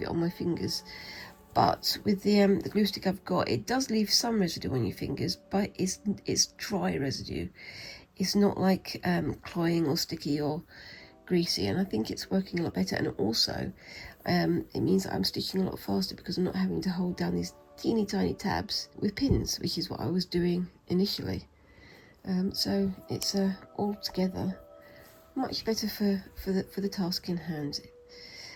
it on my fingers. But with the glue stick I've got, it does leave some residue on your fingers, but it's dry residue. It's not like cloying or sticky or greasy, and I think it's working a lot better. And also, it means that I'm stitching a lot faster because I'm not having to hold down these teeny tiny tabs with pins, which is what I was doing initially. So it's altogether much better for the task in hand.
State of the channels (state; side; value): identical; both; correlation 1.00